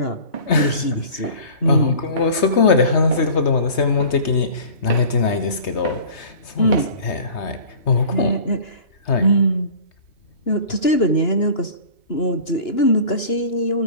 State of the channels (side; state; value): right; late; 3.2 ms